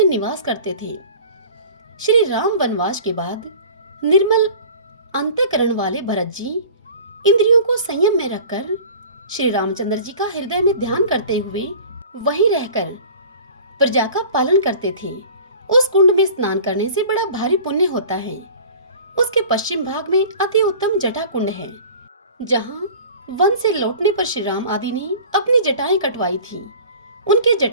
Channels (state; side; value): inverted; both; correlation -0.43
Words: निवास करते थे। श्री राम वनवास के बाद निर्मल अंतःकरण वाले भरत जी इंद्रियों को संयम में रखकर श्री रामचंद्र जी का हृदय में ध्यान करते हुए वहीं रहकर प्रजा का पालन करते थे। उस कुंड में स्नान करने से बड़ा भारी पुण्य होता है। उसके पश्चिम भाग में अति उत्तम जटा कुंड है, जहाँ वन से लौटने पर श्री राम आदि ने अपनी जटाएं कटवाई थी। उनके